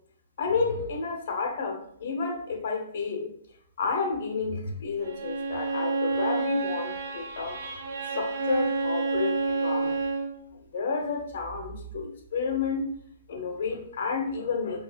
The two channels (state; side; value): inverted; both; correlation -0.64